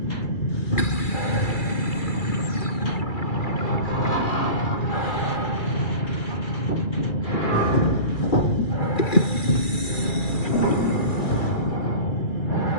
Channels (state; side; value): late; right; 2.4 ms